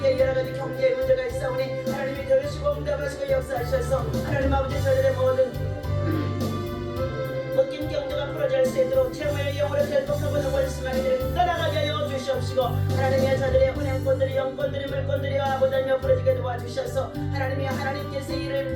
여러가지 경제의 문제가 있사오니 하나님이 들으시고 응답하시고 역사하셔서 하나님 아버지 저들의 모든 묶인 경제가 풀어질 수 있도록 최후의 영으로 결속하고는 원수마귀들을 떠나가게 하여 주시옵시고 하나님이여 저들의 은행권들이 영권들이 물권들이 아버지여 풀어지게 도와주셔서 하나님이여 하나님께서 이를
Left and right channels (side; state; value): both; identical; correlation 1.00